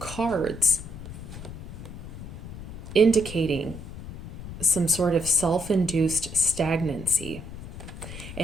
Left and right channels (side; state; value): left; noise; rumble, 11 dB below the sound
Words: indicating some sort of self-induced stagnancy.